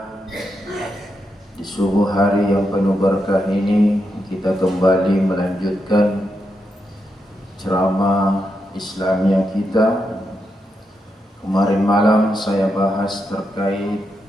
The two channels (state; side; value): normal; both; correlation 0.84